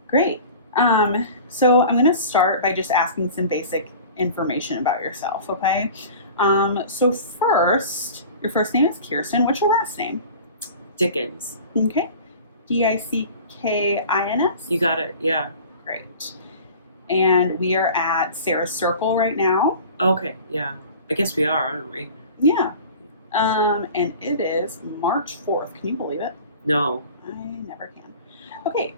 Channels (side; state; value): both; inverted; correlation -0.40